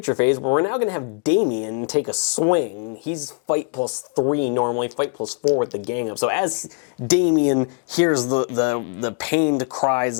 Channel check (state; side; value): quieter; right; 37.9 dB